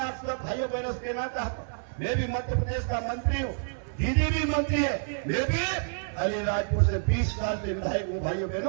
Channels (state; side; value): silent; left; 59 dB below the other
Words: आप सब भाइयों बहनों से कहना चाहता हूँ, मैं भी मध्य प्रदेश का मंत्री हूँ, दीदी भी मंत्री है, मैं भी अलीराजपुर से 20 साल से विधायक हूँ। भाइयों